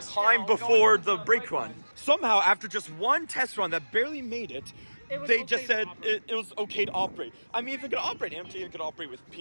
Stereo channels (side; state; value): both; inverted; correlation -1.00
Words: time before the brake run. Somehow, after just one test run that barely made it, they just said it was okay to operate. I mean, if it could operate empty, it could operate with